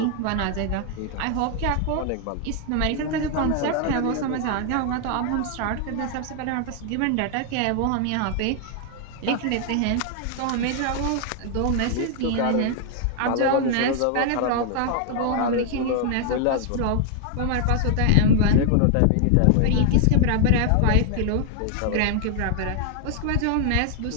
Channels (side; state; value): both; different; correlation 0.00